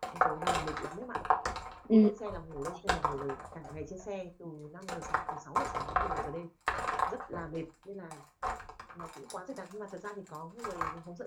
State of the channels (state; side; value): identical; both; correlation 1.00